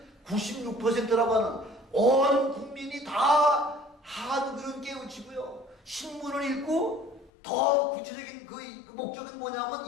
96%라고 하는, 온 국민이 다 한글을 깨우치고요, 신문을 읽고, 더 구체적인 그 목적은 뭐냐면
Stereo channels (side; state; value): right; drops out; at 7.3 s